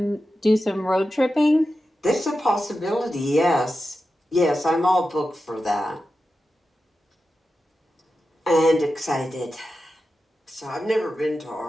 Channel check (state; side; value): normal; both; correlation 0.91